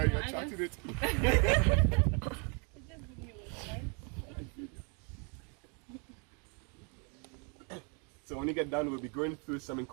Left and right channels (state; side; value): quieter; left; 36.0 dB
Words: know, You're I chatting just, it. it just give me wedding vibes. So when you get done, we'll be going through something